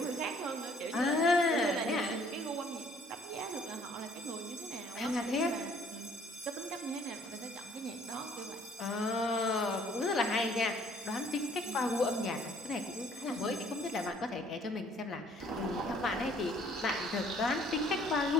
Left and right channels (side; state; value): both; normal; correlation 0.60